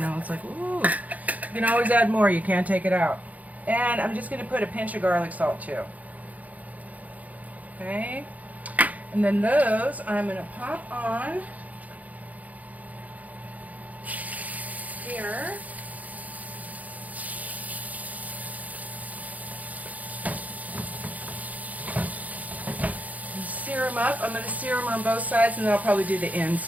it's like, ooh. You can always add more. You can't take it out. And I'm just going to put a pinch of garlic salt too. Okay. And then those I'm going to pop on here. Sear them up. I'm going to sear them on both sides, and then I'll probably do the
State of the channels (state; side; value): late; left; 0.076 ms